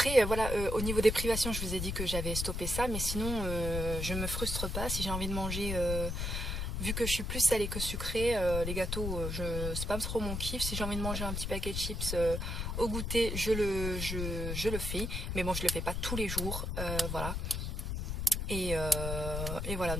voilà, au niveau des privations, je vous ai dit que j'avais stoppé ça, mais sinon, je me frustre pas. Si j'ai envie de manger, vu que je suis plus salée que sucrée, les gâteaux, c'est pas trop mon kiff. Si j'ai envie de manger un petit paquet de chips au goûter, je le fais. Mais bon, je le fais pas tous les jours, voilà. Et voilà,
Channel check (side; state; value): left; noise; rumble, 2 dB below the sound